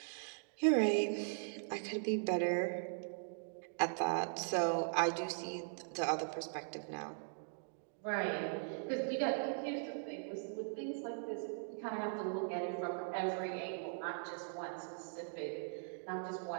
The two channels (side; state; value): left; silent; digital silence